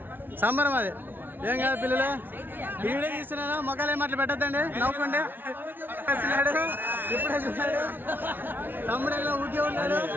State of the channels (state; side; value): late; left; 0.095 ms